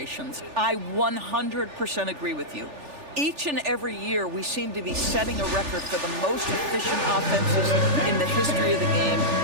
I 100% agree with you. Each and every year, we seem to be setting a record for the most efficient offenses in the history of the game.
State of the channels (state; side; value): late; left; 3.4 ms